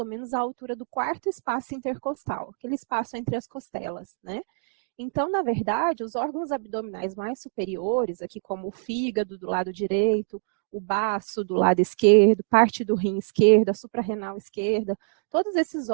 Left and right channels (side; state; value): left; silent; digital silence